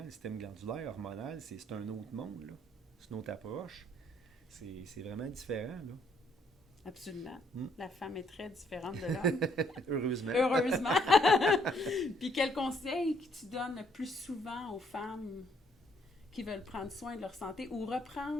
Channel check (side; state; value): both; normal; correlation 0.68